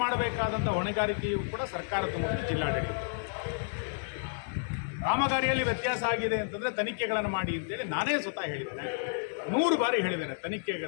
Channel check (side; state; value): right; silent; 57 dB below the other